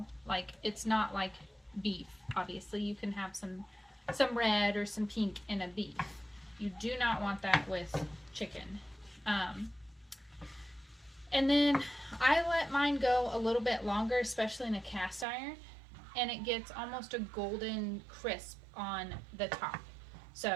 Like, it's not like beef. Obviously, you can have some red or some pink in a beef. You do not want that with chicken. And then I let mine go a little bit longer, especially in a cast iron, and it gets almost a golden crisp on the top.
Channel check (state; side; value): drops out; left; at 15.2 s